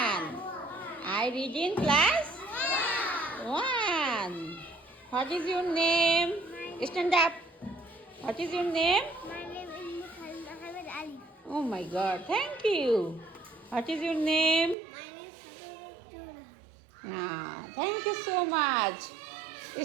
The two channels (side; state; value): left; drops out; at 14.8 s